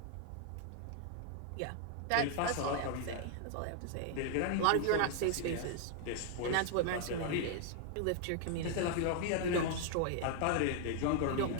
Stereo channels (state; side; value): different; both; correlation 0.00